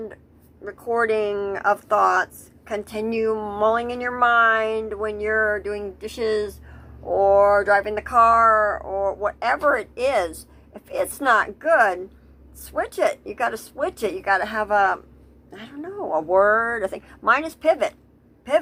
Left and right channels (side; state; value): both; identical; correlation 1.00